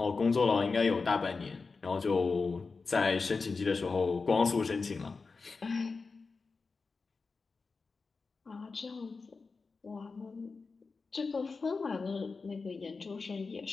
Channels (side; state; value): right; quieter; 4.4 dB